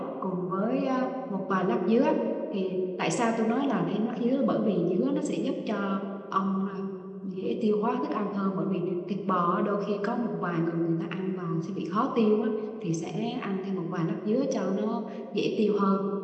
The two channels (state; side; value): identical; both; correlation 1.00